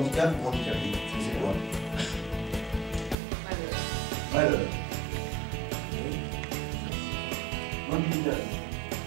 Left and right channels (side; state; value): left; drops out; at 3.2 s